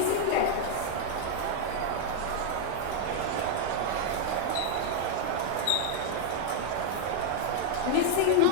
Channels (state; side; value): different; both; correlation 0.00